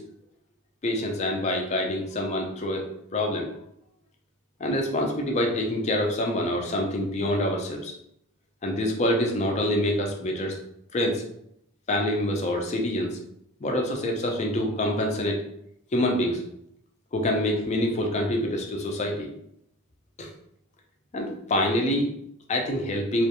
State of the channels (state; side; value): normal; both; correlation 0.34